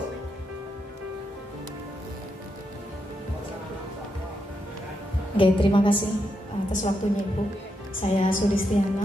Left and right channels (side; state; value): both; normal; correlation 0.82